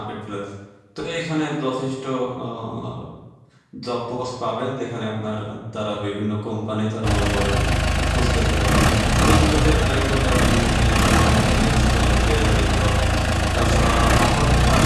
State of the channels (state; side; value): identical; both; correlation 1.00